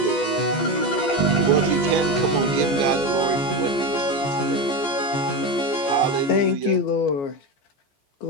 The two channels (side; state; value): right; late; 14 ms